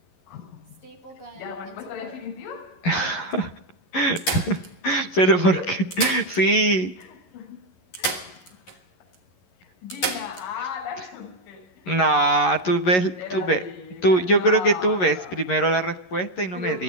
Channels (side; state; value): right; late; 11 ms